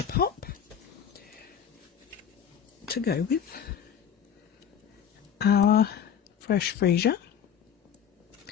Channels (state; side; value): quieter; right; 8.4 dB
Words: Pop to go with our Fresh Freesia.